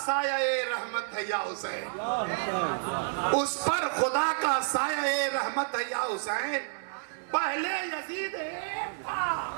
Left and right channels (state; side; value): silent; left; digital silence